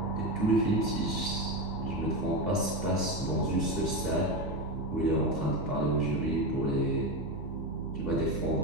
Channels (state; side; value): normal; both; correlation 0.16